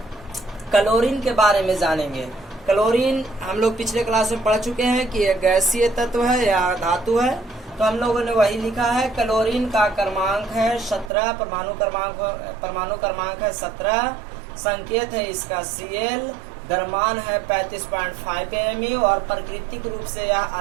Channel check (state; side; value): drops out; left; at 11.1 s